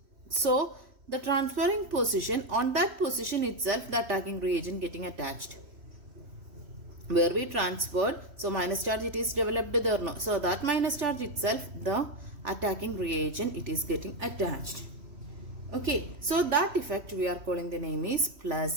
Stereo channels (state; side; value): late; left; 3.1 ms